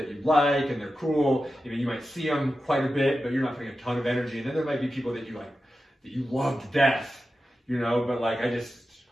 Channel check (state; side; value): normal; both; correlation 0.92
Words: you like and they're cool. You know, you might see them quite a bit, but you're not putting a ton of energy. And then there might be people that you like, that you love to death, you know, but like,